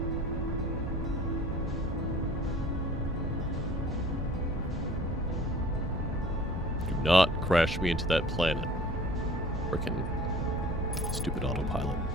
Do not crash me into that planet. Frickin' stupid autopilot.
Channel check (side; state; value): both; normal; correlation 0.47